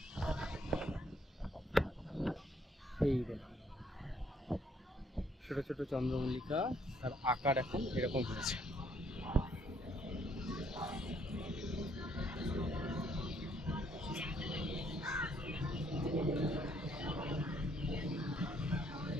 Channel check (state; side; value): normal; both; correlation 0.67